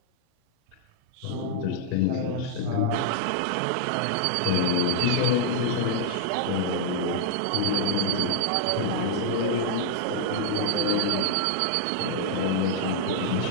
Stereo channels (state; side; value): different; both; correlation -0.01